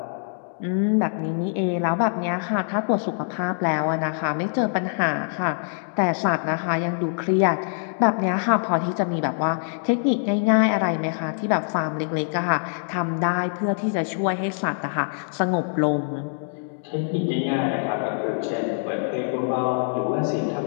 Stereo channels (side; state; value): right; silent; 62 dB below the other